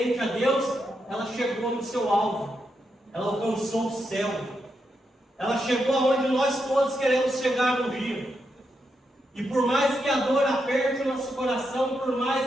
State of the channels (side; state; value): both; normal; correlation 0.83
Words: a Deus, ela chegou no seu alvo, ela alcançou o céu, ela chegou aonde nós todos queremos chegar um dia. E por mais que a dor aperte o nosso coração, por mais